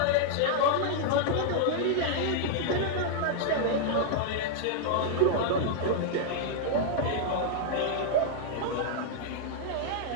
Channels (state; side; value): different; both; correlation -0.01